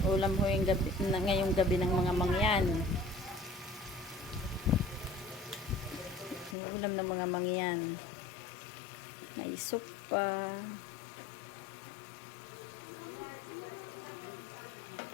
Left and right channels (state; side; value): drops out; right; at 6.6 s